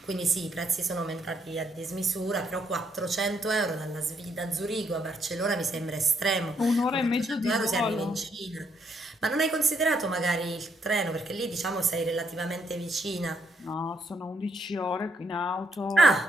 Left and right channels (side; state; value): both; normal; correlation 0.74